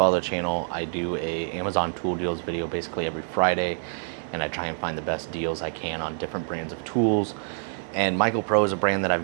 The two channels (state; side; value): silent; left; digital silence